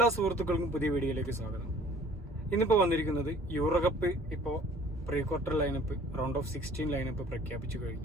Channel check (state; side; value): normal; both; correlation 0.52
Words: സുഹൃത്തുക്കൾക്കും പുതിയ വീഡിയോയിലേക്ക് സ്വാഗതം. ഇന്നിപ്പോൾ വന്നിരിക്കുന്നത് യൂറോകപ്പ് ഇപ്പോൾ pre quarter lineup round of 16 lineup പ്രഖ്യാപിച്ചു